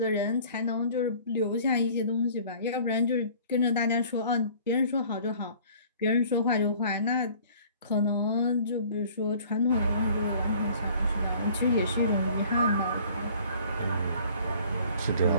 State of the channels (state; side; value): inverted; both; correlation -0.52